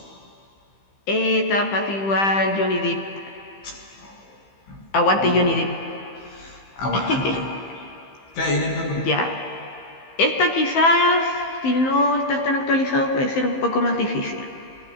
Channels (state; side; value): late; right; 15 ms